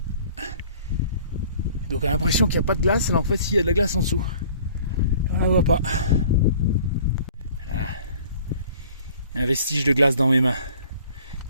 Donc on a l'impression qu'il n'y a pas de glace, alors en fait il y a de la glace en dessous. On la voit pas. Ah. Un vestige de glace dans mes mains.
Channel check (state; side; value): inverted; both; correlation -0.51